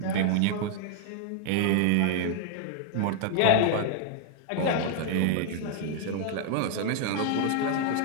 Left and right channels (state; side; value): different; both; correlation 0.00